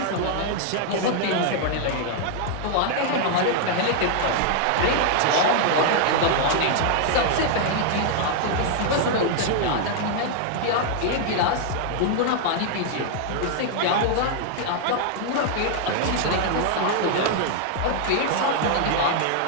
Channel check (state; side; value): different; both; correlation 0.00